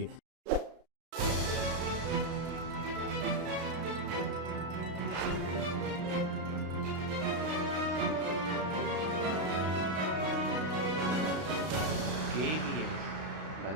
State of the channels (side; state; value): left; late; 33 ms